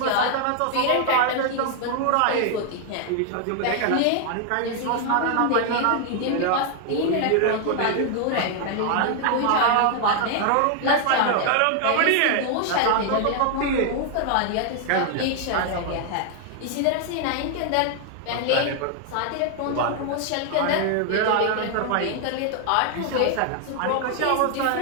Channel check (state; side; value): different; both; correlation 0.00